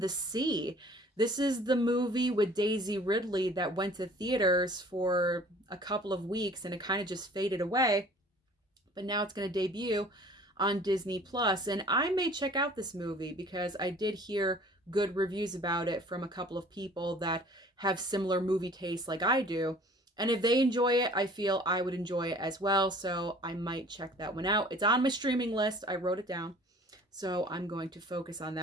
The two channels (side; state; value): both; normal; correlation 0.50